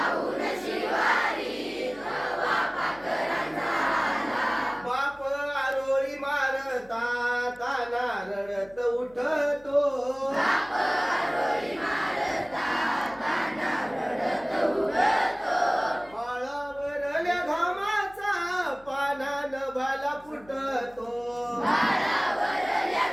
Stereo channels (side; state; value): left; noise; hum, 25 dB below the sound